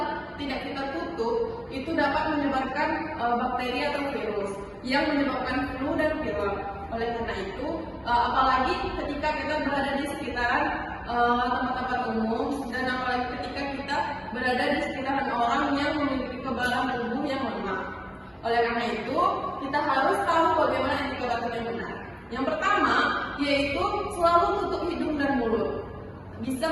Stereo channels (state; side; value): identical; both; correlation 1.00